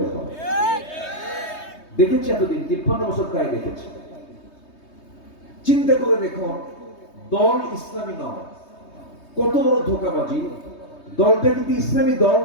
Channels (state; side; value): late; right; 3.2 ms